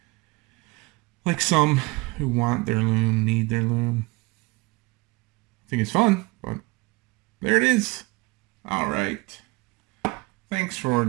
Like some who want their loom, need their loom. I think it's fun, but there it is. All right. Thanks for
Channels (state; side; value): quieter; left; 24.2 dB